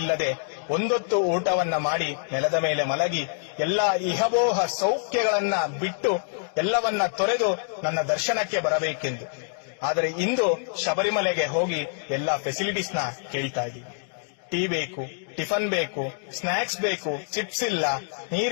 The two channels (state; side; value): silent; right; digital silence